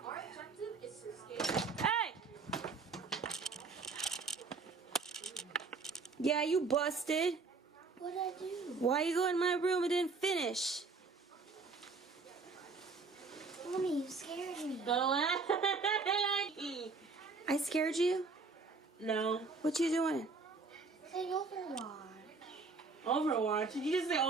Hey! Yeah, you busted. What'd I do? Why you go in my room and didn't finish? Mommy, you scared me. I scared you? No. What you doing? Say Overwatch. Overwatch? Did you just say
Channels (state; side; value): quieter; left; 4.3 dB